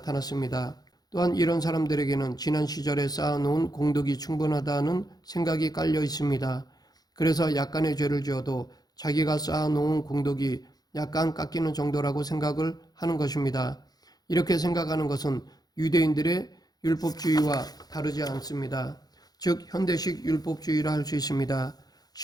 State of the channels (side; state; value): right; late; 0.19 ms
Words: 또한 이런 사람들에게는 지난 시절에 쌓아놓은 공덕이 충분하다는 생각이 깔려 있습니다. 그래서 약간의 죄를 지어도 자기가 쌓아놓은 공덕이 약간 깎이는 정도라고 생각을 하는 것입니다. 이렇게 생각하는 것은 유대인들의 율법주의와 다르지 않습니다. 즉 현대식 율법주의라 할 수 있습니다.